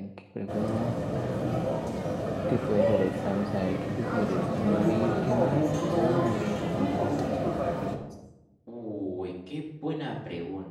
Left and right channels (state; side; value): identical; both; correlation 1.00